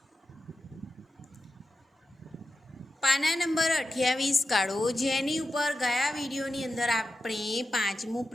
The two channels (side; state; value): both; normal; correlation 0.91